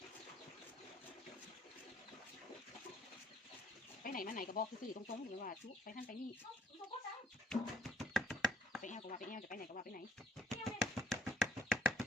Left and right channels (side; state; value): both; normal; correlation 0.65